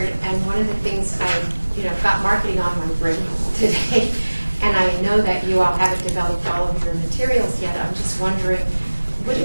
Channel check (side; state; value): both; inverted; correlation -1.00